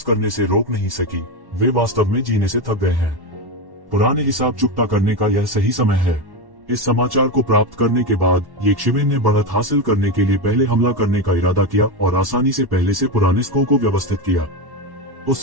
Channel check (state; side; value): late; left; 1.1 ms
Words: करने से रोक नहीं सकी। वे वास्तव में जीने से थक गए हैं। पुराने हिसाब चुकता करने का यह सही समय है। इस समाचार को प्राप्त करने के बाद येज़िवेन ने बढ़त हासिल करने के लिए पहले हमला करने का इरादा किया और आसानी से पहले से पुराने स्कोर को व्यवस्थित किया।